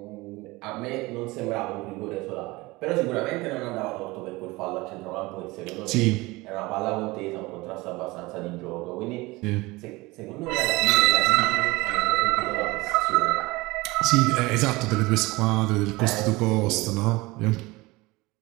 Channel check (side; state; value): left; quieter; 21.9 dB